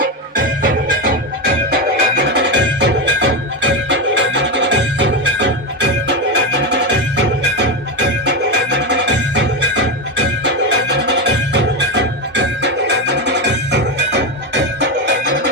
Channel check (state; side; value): normal; both; correlation 0.13